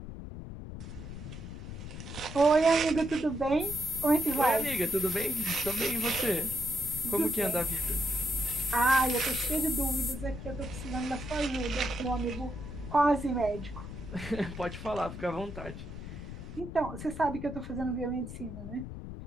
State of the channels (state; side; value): noise; left; rumble, 10 dB below the sound